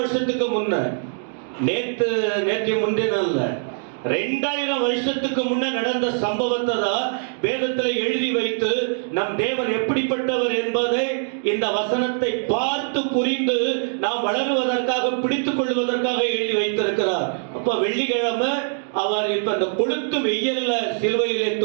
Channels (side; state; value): left; silent; digital silence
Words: முன்ன, நேற்று முந்தின அல்ல, 2000 வருஷத்துக்கு முன்ன நடந்த சம்பவத்தை தான் வேதத்தில் எழுதி வைத்து நம் தேவன் எப்படிப்பட்டவர் என்பதை இந்த வசனத்தை பார்த்து புரிந்து நாம் வளருவதற்காக, பிடித்துக் கொள்வதற்காக எழுதி வைத்திருக்கிறார். அப்ப வெள்ளிக்கிழமை அவர் இப்ப அந்த கொளுத்து வெயில்ல சிலுவையிலே